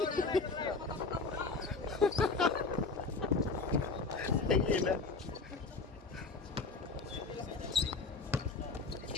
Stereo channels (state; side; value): quieter; right; 4.1 dB